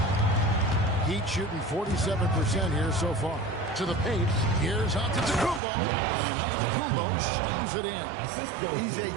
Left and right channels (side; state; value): left; drops out; at 5.6 s